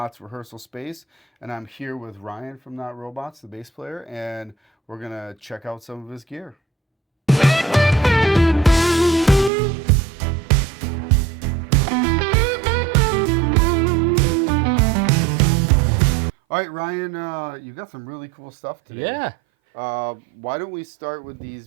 rehearsal space. And I'm here with Ryan from Not Robots, the bass player, and we're gonna check out some of his gear. All right, Ryan, you got some really cool stuff today. Yeah. Why don't we start with these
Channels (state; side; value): drops out; left; at 9.5 s